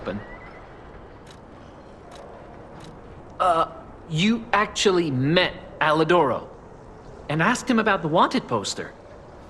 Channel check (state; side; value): identical; both; correlation 1.00